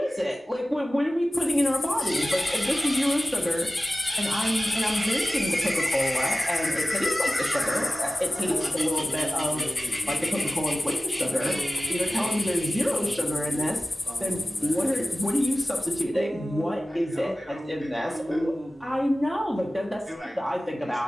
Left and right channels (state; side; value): normal; both; correlation 0.96